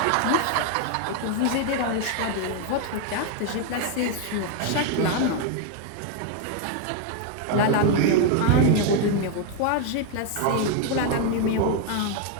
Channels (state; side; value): different; both; correlation 0.01